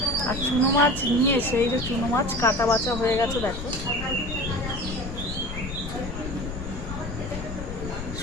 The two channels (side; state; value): left; noise; rumble, 8 dB below the sound